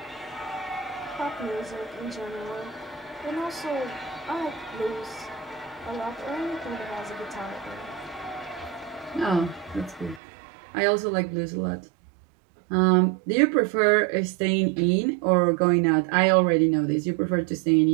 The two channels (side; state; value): left; drops out; at 10.2 s